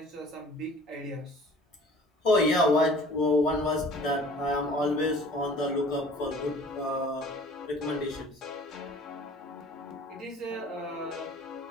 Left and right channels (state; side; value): normal; both; correlation 0.49